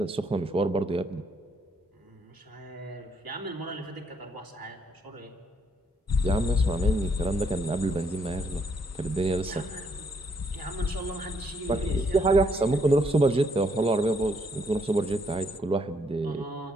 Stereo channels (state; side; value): normal; both; correlation 0.71